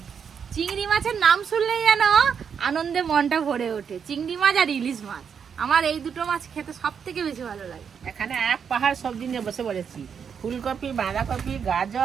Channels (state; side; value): quieter; left; 7.0 dB